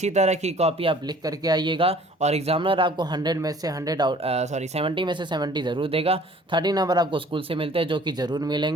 तरह की कॉपी आप लिख करके आइएगा और एग्जामिनर आपको 100 में से 100 70 में से 70 ज़रूर देगा। 30 नंबर आपको स्कूल से मिलते हैं, जो कि ज़रूर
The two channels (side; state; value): both; normal; correlation 0.52